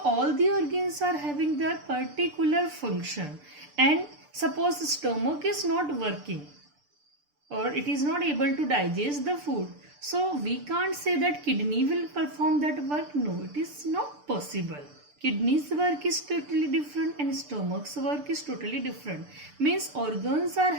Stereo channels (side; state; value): left; late; 6.8 ms